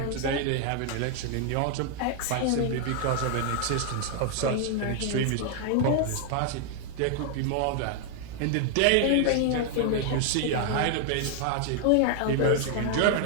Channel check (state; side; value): different; both; correlation 0.00